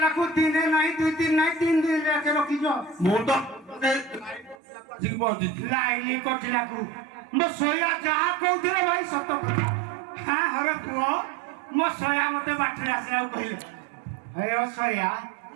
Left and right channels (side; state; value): left; drops out; at 4.5 s